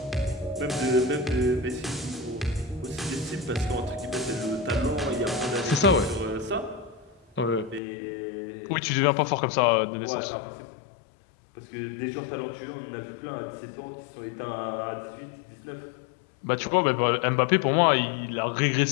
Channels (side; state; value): right; drops out; at 7.8 s